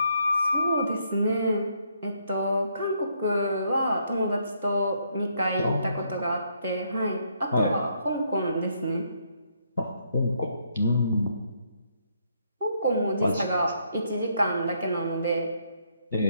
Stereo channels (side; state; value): both; inverted; correlation -0.73